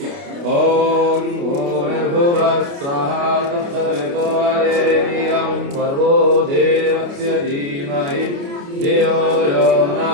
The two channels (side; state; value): left; late; 29 ms